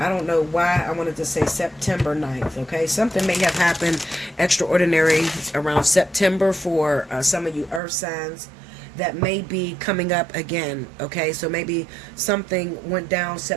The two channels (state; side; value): drops out; left; at 7.8 s